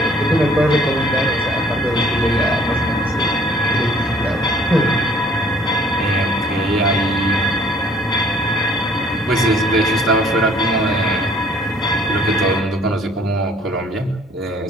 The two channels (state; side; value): normal; both; correlation 0.58